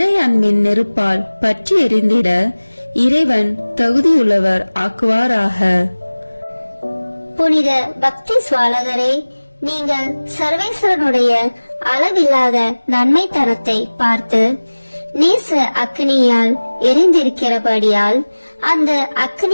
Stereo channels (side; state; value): both; inverted; correlation -1.00